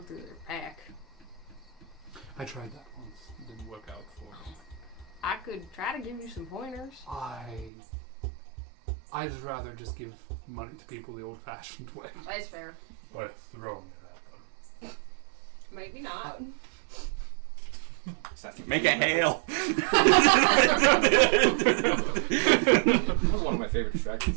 through their pack. I tried that once. It didn't work out for me. I could try to give you some pointers. I'd rather just give money to people the old-fashioned way. That's fair. By throwing it at them. Maybe not. Assassin's Make a Creed method. hail. That was one of my favorite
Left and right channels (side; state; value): left; drops out; at 7.7 s